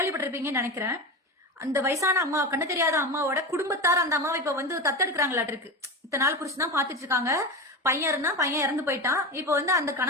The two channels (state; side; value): normal; both; correlation 0.23